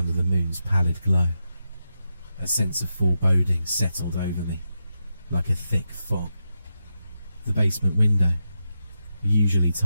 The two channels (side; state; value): both; inverted; correlation -0.87